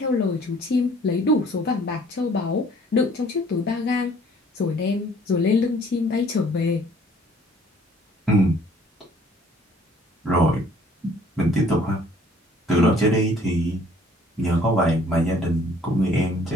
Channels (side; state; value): both; normal; correlation 0.57